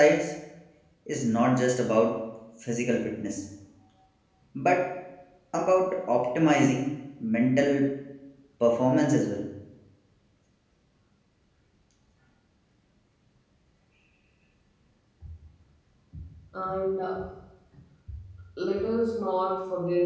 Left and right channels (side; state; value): both; identical; correlation 1.00